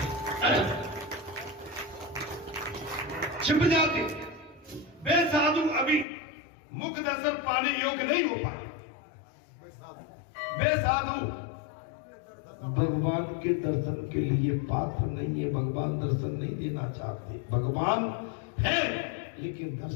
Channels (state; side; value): drops out; right; at 6.1 s